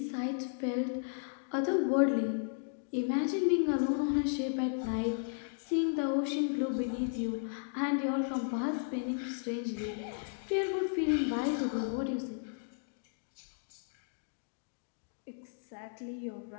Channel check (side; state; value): right; silent; digital silence